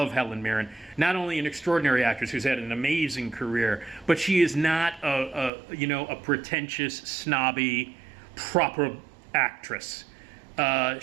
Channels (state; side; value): drops out; left; at 5.5 s